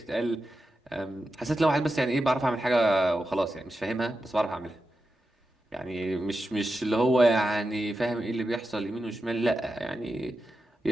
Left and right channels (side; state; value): both; normal; correlation 0.90